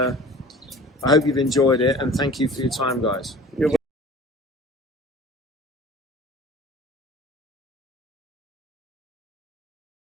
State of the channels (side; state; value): both; normal; correlation 0.44